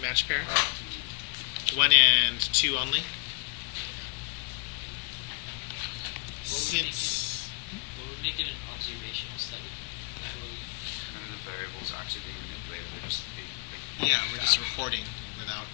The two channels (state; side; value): quieter; right; 39.2 dB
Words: pair? 1 and 2 only? Yeah. What would make it an observational study? Like what would- actually being manipulated. We're just Yeah, we're just recording